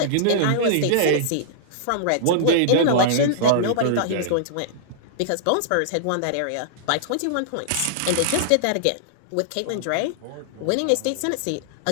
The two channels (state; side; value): different; both; correlation -0.01